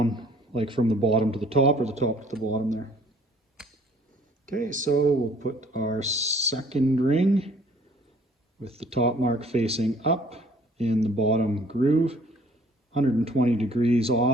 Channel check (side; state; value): both; normal; correlation 0.57